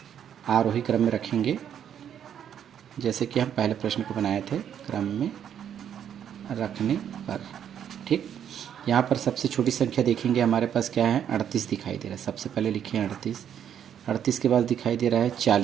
आरोही क्रम में रखेंगे, जैसे कि हम पहले प्रश्न को बनाए थे, क्रम में रखने पर। ठीक, यहाँ पर सबसे छोटी संख्या देखेंगे, हमारे पास क्या है 38 दिखाई दे रहा है। सबसे पहले लिखें 38, 38 के बाद दिखाई दे रहा है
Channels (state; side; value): quieter; left; 9.2 dB